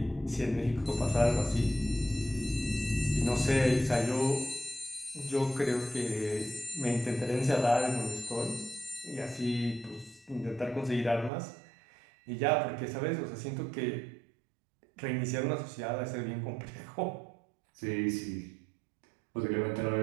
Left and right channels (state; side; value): drops out; left; at 11.3 s